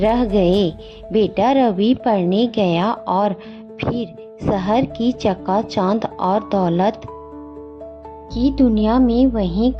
गए। बेटा रवि पढ़ने गया और फिर शहर की चकाचौंध और दौलत की दुनिया में वहीं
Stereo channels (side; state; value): both; identical; correlation 1.00